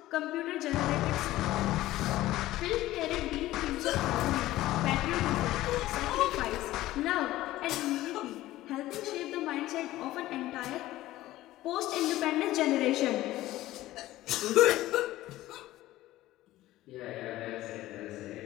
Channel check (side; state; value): right; quieter; 15.9 dB